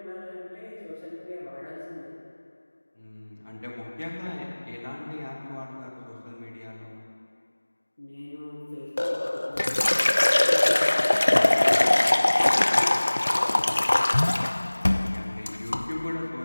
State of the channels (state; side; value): inverted; both; correlation -1.00